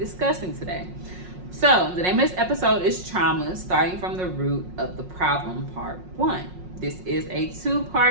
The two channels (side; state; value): left; late; 5.5 ms